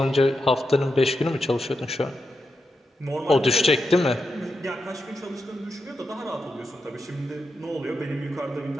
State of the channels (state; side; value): normal; both; correlation 0.87